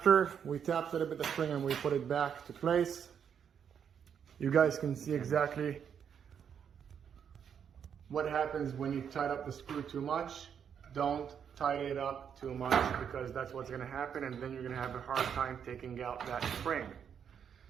we tapped a little bit the spring and we put it back to place, you guys can see exactly what happens when you tight up the screw too much. Don't tighten it up too much, because that's what's going to happen, and then you're going to have a hard time taking out that spring.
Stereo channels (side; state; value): left; quieter; 7.9 dB